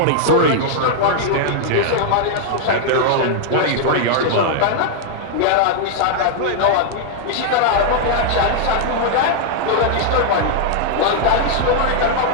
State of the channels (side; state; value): both; different; correlation -0.01